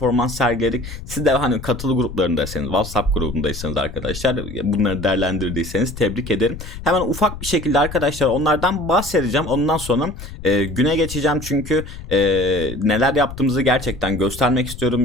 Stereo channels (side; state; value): left; noise; rumble, 11 dB below the sound